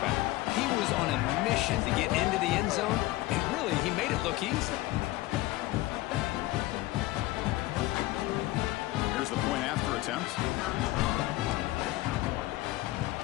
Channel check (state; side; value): quieter; right; 17.8 dB